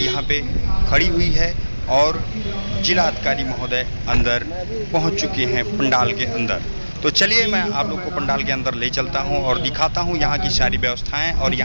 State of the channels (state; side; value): inverted; both; correlation -1.00